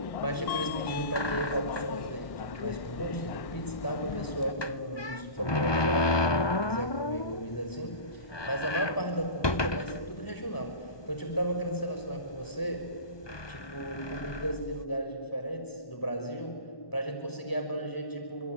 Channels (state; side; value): late; right; 1.2 ms